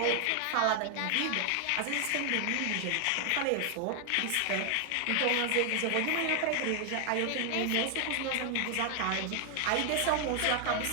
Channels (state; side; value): different; both; correlation 0.00